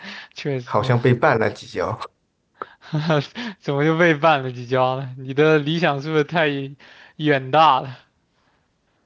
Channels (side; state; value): both; identical; correlation 1.00